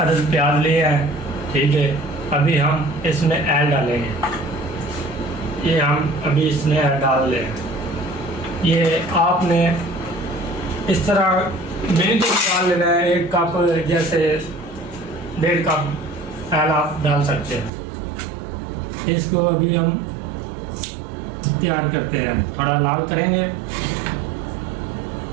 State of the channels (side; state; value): left; drops out; at 17.7 s